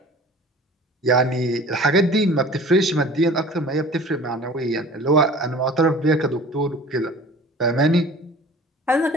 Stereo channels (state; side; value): normal; both; correlation 0.44